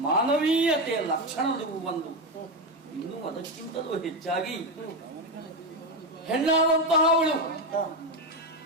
ಮಾನವೀಯತೆಯ ಲಕ್ಷಣದ ಒಂದು. ಇನ್ನು ಅದಕ್ಕಿಂತಲೂ ಹೆಚ್ಚಾಗಿ ಹೆಣ್ಣಾದಂತಹ ಅವಳು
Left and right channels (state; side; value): normal; both; correlation 0.11